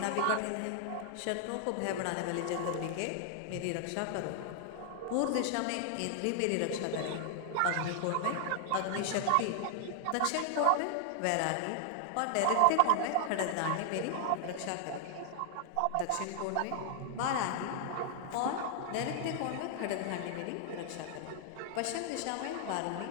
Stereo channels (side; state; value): both; different; correlation -0.01